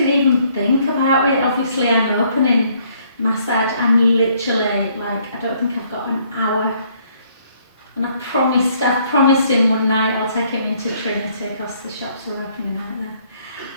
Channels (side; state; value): both; inverted; correlation -0.66